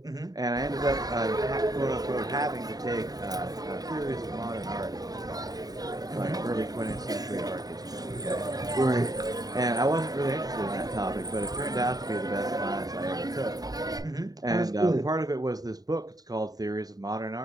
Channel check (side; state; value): left; late; 0.18 ms